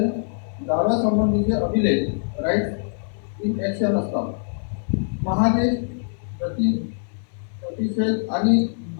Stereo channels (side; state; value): right; silent; digital silence